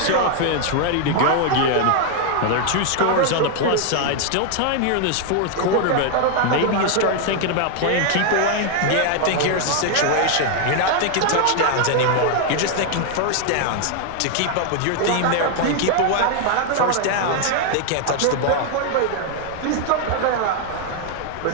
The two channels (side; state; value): both; different; correlation 0.00